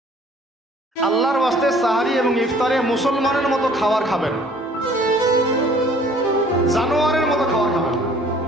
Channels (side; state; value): both; normal; correlation 0.54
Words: আল্লাহর ওয়াস্তে সাহারি এবং ইফতারে মুসলমানের মতো খাবার খাবেন, জানোয়ারের মতো খাবার খাবেন